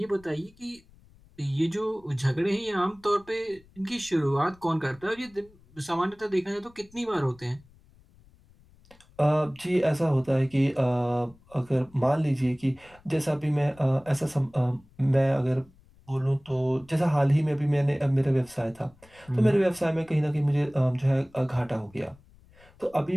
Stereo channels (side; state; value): left; noise; rumble, 27 dB below the sound